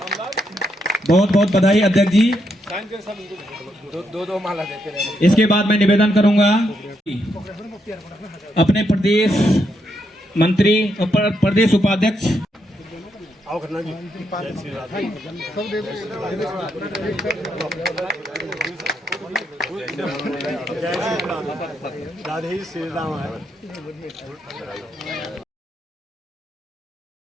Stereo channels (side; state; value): both; normal; correlation 0.79